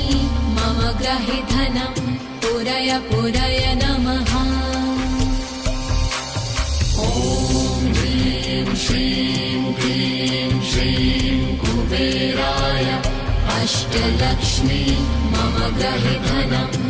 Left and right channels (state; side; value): identical; both; correlation 1.00